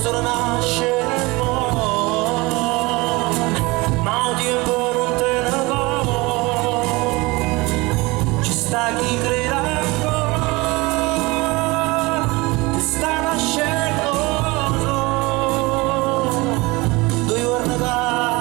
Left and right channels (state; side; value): quieter; left; 23.4 dB